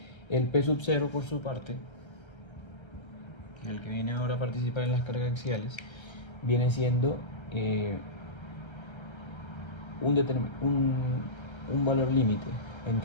El P sub 0, por su parte, el que viene ahora a participar en las cargas axiales, viene siendo un valor límite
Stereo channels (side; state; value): right; late; 1.3 ms